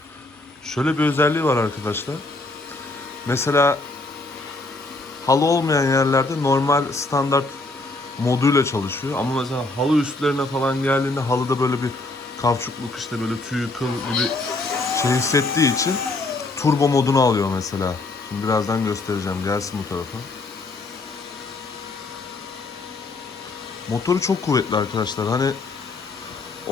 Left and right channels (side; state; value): right; quieter; 3.1 dB